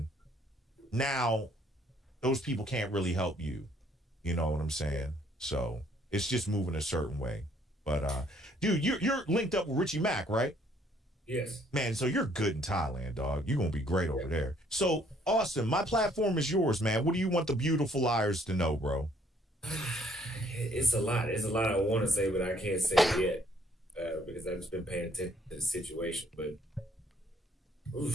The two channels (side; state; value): both; normal; correlation 0.64